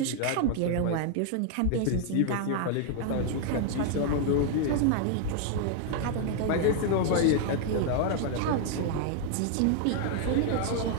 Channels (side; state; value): both; different; correlation 0.00